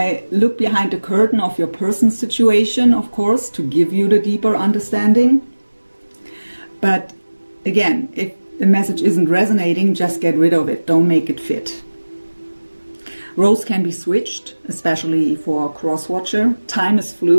look behind the curtain of your person's situation, of course, to give you the deeper understanding. But again, if the message isn't resonating, just get rid of it. Don't make it fit. Roles can be switched, especially for a cross-watcher. Time is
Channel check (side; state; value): both; inverted; correlation -1.00